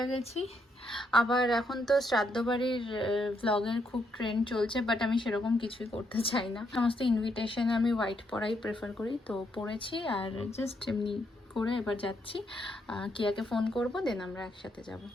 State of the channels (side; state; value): both; normal; correlation 0.76